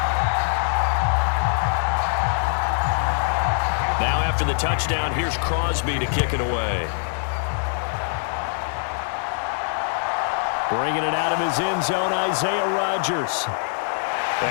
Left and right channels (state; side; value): silent; right; 56 dB below the other